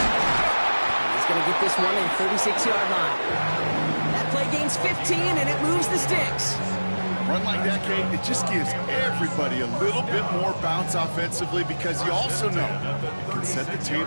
he's going to get this one in 36-yard line. That play gains 15, and it moves the sticks. run like that, Kate, it just gives everybody a little bit more bounce offensively because you also know it can set the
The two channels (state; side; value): inverted; both; correlation -1.00